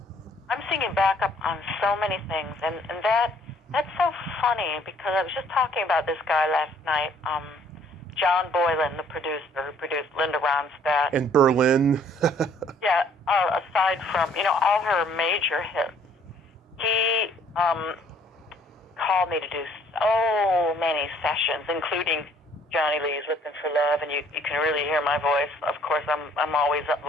I'm singing backup on so many things, and that's so funny, because I was just talking about this guy last night, John Boylan, the producer who produced Linda Ronstadt. And Berlin. Yeah, aside from, all her major hits, he called me to do so many sessions, including Johnny Lee's "Looking for Love," and you can really hear my voice. Of course, I'm always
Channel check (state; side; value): normal; both; correlation 0.60